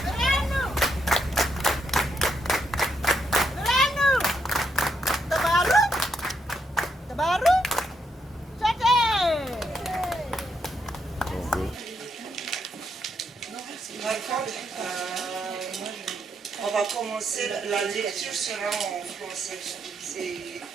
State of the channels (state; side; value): normal; both; correlation 0.79